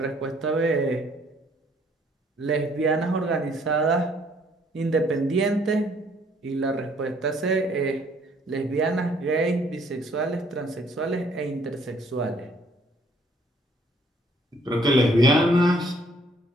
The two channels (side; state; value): both; normal; correlation 0.63